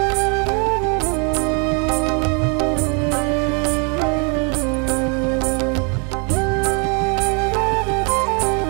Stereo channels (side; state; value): left; quieter; 36.0 dB